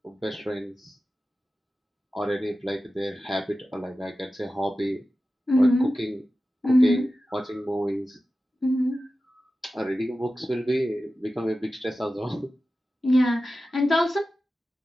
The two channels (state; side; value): normal; both; correlation 0.94